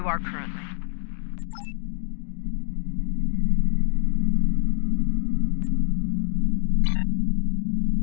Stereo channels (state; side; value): silent; right; 62 dB below the other